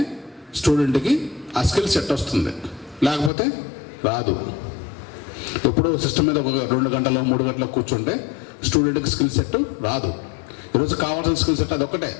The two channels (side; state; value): right; drops out; at 3.3 s